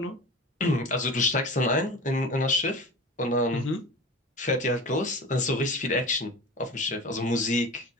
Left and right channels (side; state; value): both; normal; correlation 0.33